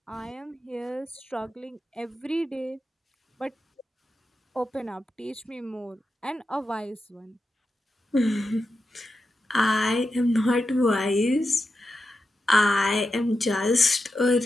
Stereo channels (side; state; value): both; normal; correlation 0.89